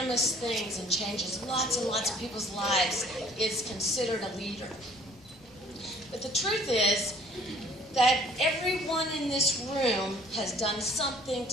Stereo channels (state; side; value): noise; left; rumble, 27 dB below the sound